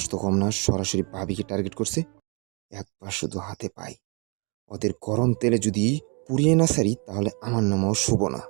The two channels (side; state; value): left; quieter; 32.8 dB